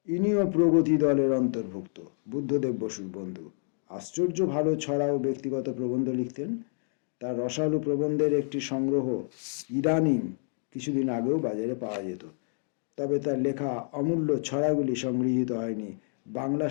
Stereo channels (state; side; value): silent; right; 59 dB below the other